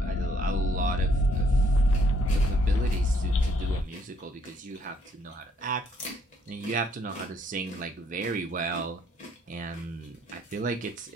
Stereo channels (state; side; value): normal; both; correlation 0.67